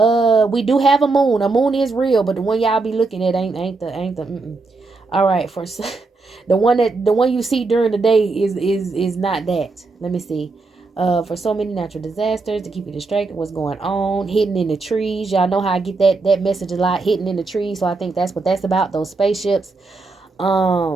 do have a moon. A moon is real, but the one y'all be looking at ain't the. All right, for the one you see during the day is not that. Let me see. For so many natural disasters, to keep you distracted, what's going on, hidden in the trees. Y'all know how I get that message a lot, hidden in the trees. So I think that's what that's about, those spaceships.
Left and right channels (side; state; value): left; quieter; 3.7 dB